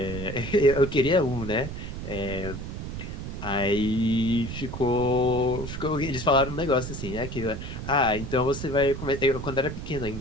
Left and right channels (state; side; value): noise; right; rumble, 7 dB below the sound